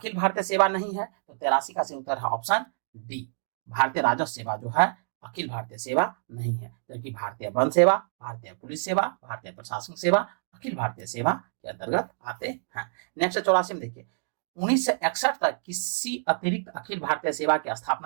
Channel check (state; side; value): silent; left; digital silence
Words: भारतीय सेवा नहीं है, तो 83 का सही उत्तर है ऑप्शन डी, भारतीय राजस्व सेवा जो है अखिल भारतीय सेवा नहीं है, जबकि भारतीय वन सेवा, भारतीय पुलिस सेवा, भारतीय प्रशासनिक सेवा अखिल भारतीय सेवा के अंतर्गत आते हैं। नेक्स्ट 84 में देखिए, 1961 तक किसी अतिरिक्त अखिल भारतीय सेवा की